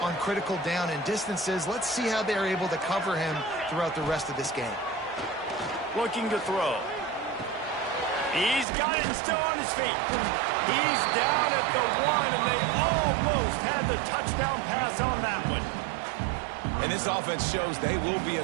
on critical down and distances. Let's see how they're able to cover him throughout the rest of this game. Looking to throw. He's got it and still on his feet. He's down at the 1, and they almost had the touchdown pass on that one. And this offense shows they will be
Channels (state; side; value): drops out; left; at 8.7 s